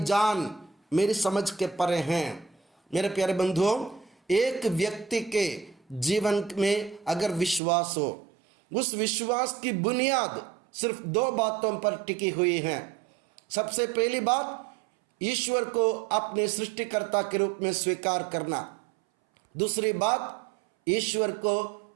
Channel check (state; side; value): drops out; left; at 7.6 s